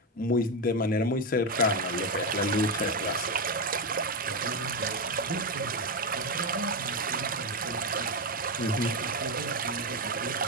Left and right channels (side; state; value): both; normal; correlation 0.09